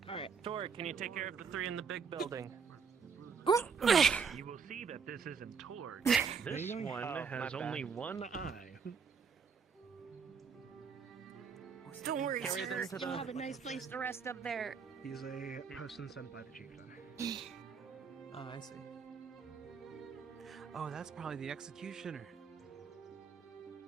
Alright, Tor, can you take care of the 3 in the big building? You will see that this isn't Torg. This one has only one eye. Don't worry, Carry them sir. to You'll the- have a nice place to rest up there. He's a person sent by the chieftain. Oh, I see. Oh, that's probably the executioner.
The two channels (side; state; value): left; quieter; 6.0 dB